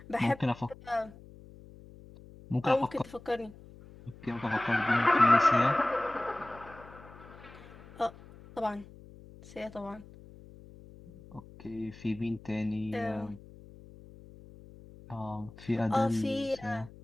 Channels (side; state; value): left; noise; hum, 20 dB below the sound